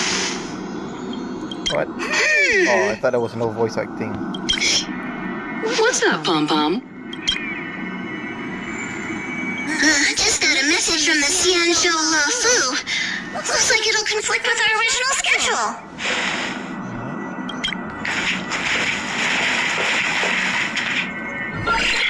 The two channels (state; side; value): identical; both; correlation 1.00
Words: What? Oh, I thought there was no voice acting. What's up, Pom Pom? Just got a message from the Xianzhou Luofu. Looks like it'll conflict with our original schedule.